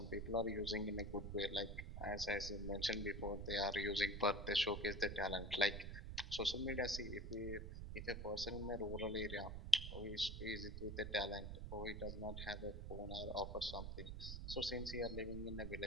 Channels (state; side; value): noise; right; rumble, 6 dB below the sound